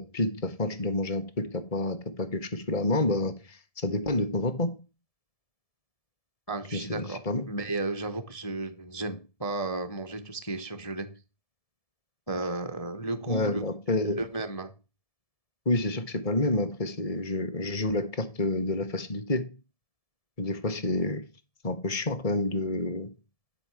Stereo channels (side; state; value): right; late; 1.7 ms